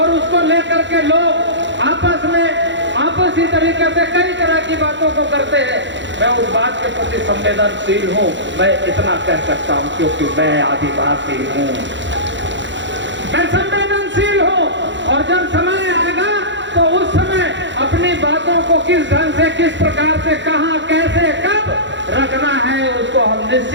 उसको लेकर के लोग आपस में आपसी तरीके से कई तरह की बातों को करते हैं। मैं उस बात के प्रति संवेदनशील हूँ, मैं इतना कह सकता हूँ क्योंकि मैं आदिवासी हूँ, मैं संवेदनशील हूँ। और जब समय आएगा तो उस समय अपनी बातों को किस ढंग से, किस प्रकार से, कहाँ, कैसे, कब रखना है, उसको हम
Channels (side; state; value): left; late; 0.53 ms